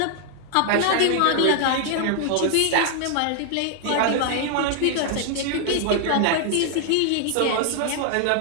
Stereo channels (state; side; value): different; both; correlation 0.00